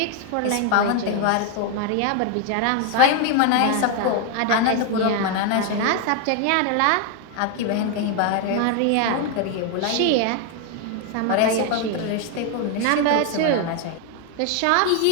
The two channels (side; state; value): both; different; correlation 0.01